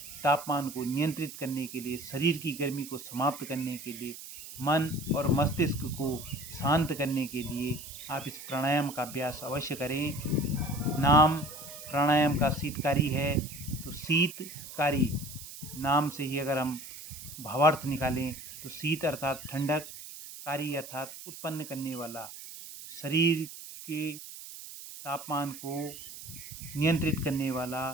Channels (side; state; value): right; noise; hiss, 13 dB below the sound